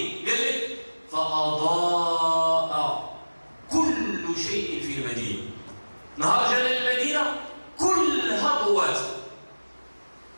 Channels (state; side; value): inverted; both; correlation -1.00